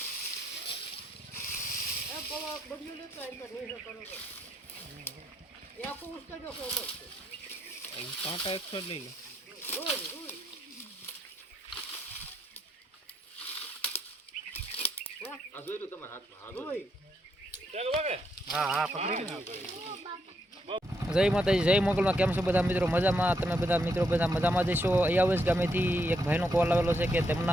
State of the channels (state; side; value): normal; both; correlation 0.78